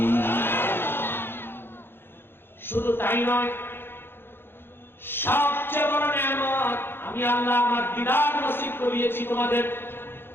শুধু তাই নয়, সবচেয়ে বড় নিয়ামত আমি আল্লাহ আমার দিদার নসিব করিয়েছি তোমাদের।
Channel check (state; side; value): late; right; 0.10 ms